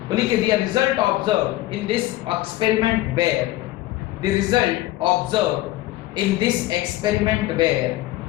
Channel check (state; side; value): quieter; right; 16.7 dB